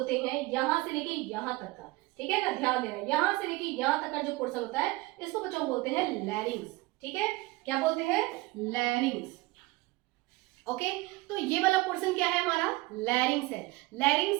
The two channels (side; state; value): left; quieter; 21.4 dB